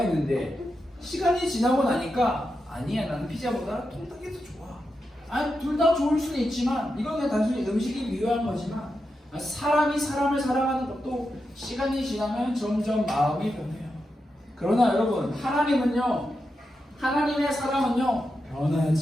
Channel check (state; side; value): normal; both; correlation 0.87